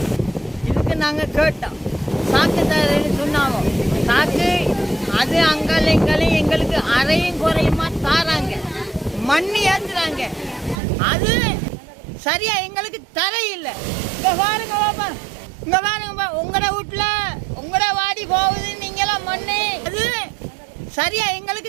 இதுக்கு நாங்கள் கேட்டோம். சாக்கு தரேன்னு சொன்னாங்க. சாக்கு அது அங்கலையும் எங்களுக்கு அரையும் குறையுமா தாராங்க, மண்ணி ஏற்றுறாங்க. அது சரியா எங்களுக்கு தரையில்லை. இங்கே பாருங்க பாப்பா, இங்கே பாருங்கப்பா, உங்களோட வீட்டில் உங்களோட வாடி போகுது நீங்களாம் மண்ணு. அது சரியா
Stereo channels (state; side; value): drops out; left; at 10.8 s